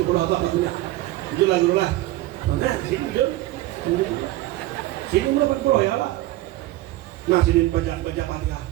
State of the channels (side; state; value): left; quieter; 16.6 dB